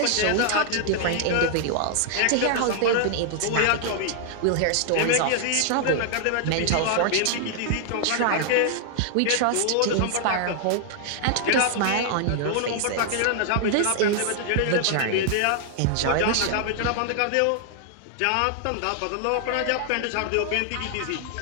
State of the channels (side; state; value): both; different; correlation 0.00